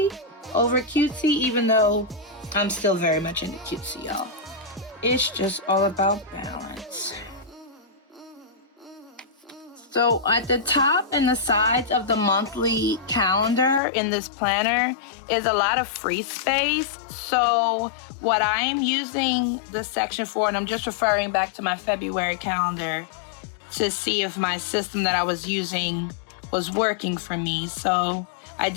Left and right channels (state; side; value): drops out; right; at 13.8 s